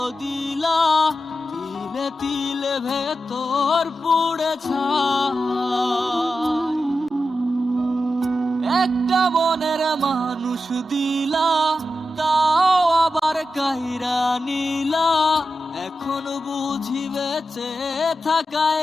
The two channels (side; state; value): both; normal; correlation 0.90